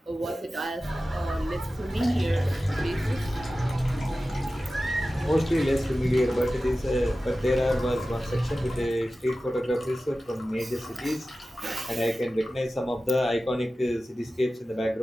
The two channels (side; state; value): both; normal; correlation 0.95